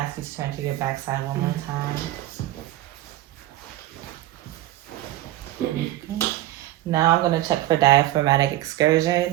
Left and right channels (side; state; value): left; quieter; 15.3 dB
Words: you to turn to your back side one more time. Okay. Now I'm going to check for diaphragmatic